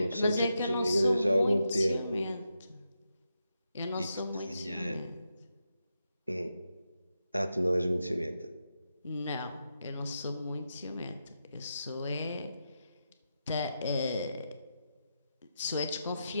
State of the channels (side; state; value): both; inverted; correlation -0.87